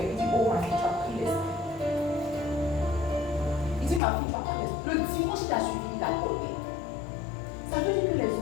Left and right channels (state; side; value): drops out; right; at 4.0 s